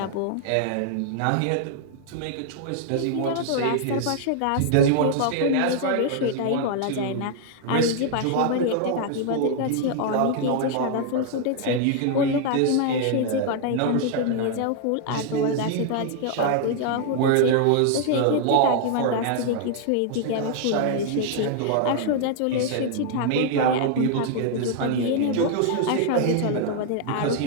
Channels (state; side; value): different; both; correlation 0.00